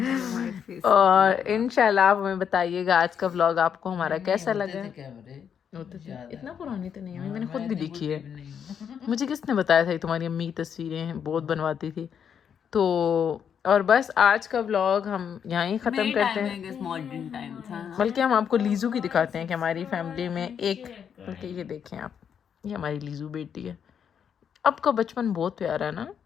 और इंशाल्लाह आप हमें बताइएगा आज का व्लॉग आपको हमारा कैसा लगा। थे कैमरे। होते थे, इतना पुरानी तो नहीं है, मैंने खुद भी देखी है। मुझे किसने बताया था तुम्हारी अम्मी की तस्वीरें बहुत बनवाती थी। तो और बस आज का व्लॉग हम यहीं ख़त्म करते हैं। मॉडर्न टाइम था। बल्कि हम आपको लीजू की दिखाते हैं कि हमारी फैमिली में एक, बल्कि ये देखें आप, ये हमारी लीजू बेटी है। अब का बचपन बहुत प्यारा है ना।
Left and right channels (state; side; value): quieter; right; 7.8 dB